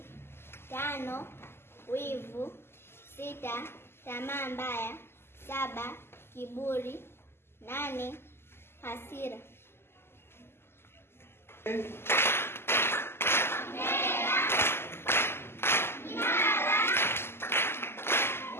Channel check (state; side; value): late; right; 0.12 ms